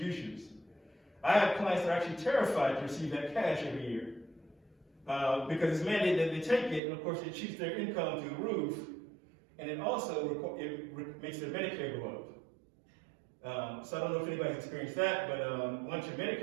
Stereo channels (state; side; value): drops out; left; at 6.8 s